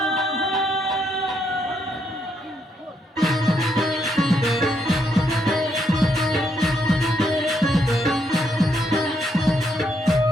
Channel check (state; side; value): normal; both; correlation 0.76